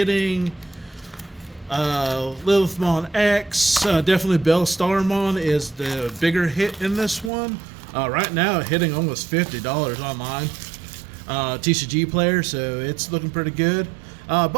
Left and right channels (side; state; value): left; drops out; at 7.3 s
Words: Lilithmon X. Definitely Bellstarmon is the bigger hit in this one. Right now hitting almost $50 online. TCG Player, so it's looking pretty good.